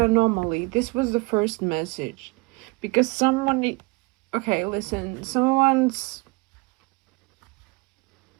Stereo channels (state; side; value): quieter; left; 26.5 dB